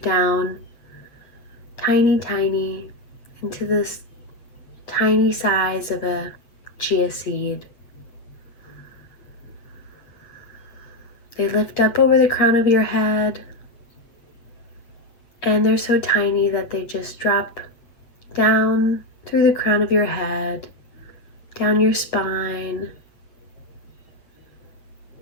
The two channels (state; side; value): late; right; 8.3 ms